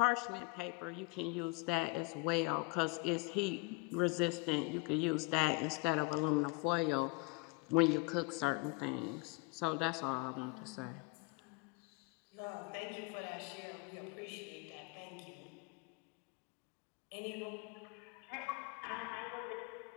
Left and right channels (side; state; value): right; quieter; 27.8 dB